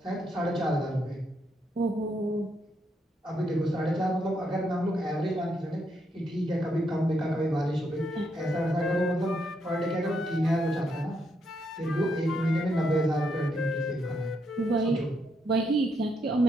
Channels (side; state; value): both; normal; correlation 0.77